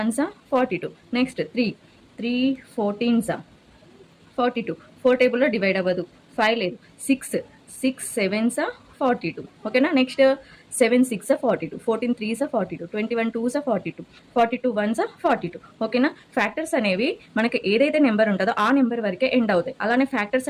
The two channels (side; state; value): both; identical; correlation 1.00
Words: 42. Next 3 14s 42. 4 టేబుల్లో డివైడ్ అవ్వదు, 5 లేదు. 6 7s 42. ఓకేనా? Next 7 6 42, 14 3s 42, 21 2s 42, 42 1s 42. ఓకేనా? ఫ్యాక్టర్స్ అనేవి మనకి ఏదైతే నెంబర్ ఉంటుందో ఆ నెంబర్ వరకే ఎండ్ అవుతాయి. అలానే ఫ్యాక్టర్స్